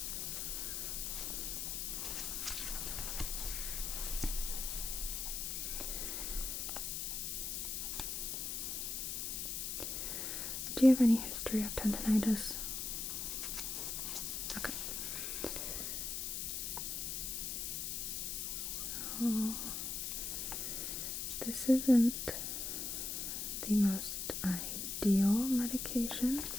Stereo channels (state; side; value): noise; left; hiss, 2 dB below the sound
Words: Do you have any history of tendinitis? Okay. So, this isn't the most ideal medication.